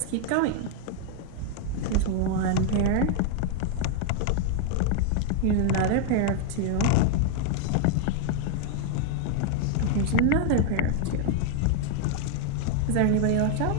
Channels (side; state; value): both; different; correlation 0.00